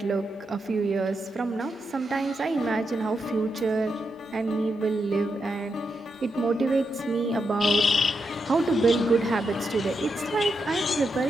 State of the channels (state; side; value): normal; both; correlation 0.84